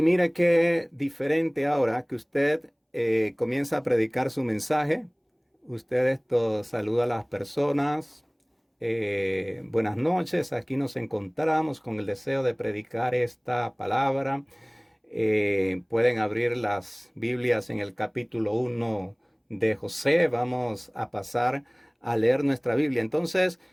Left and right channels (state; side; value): identical; both; correlation 1.00